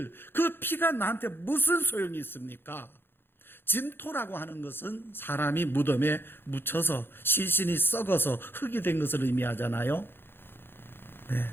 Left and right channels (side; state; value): right; late; 0.10 ms